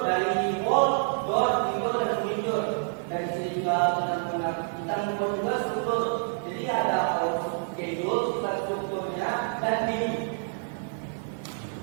dari wall, door, window, dan window. Dan di sini juga kita membuat juga struktur. Jadi ada schedule, strukturnya, dan view.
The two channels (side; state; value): left; silent; 59 dB below the other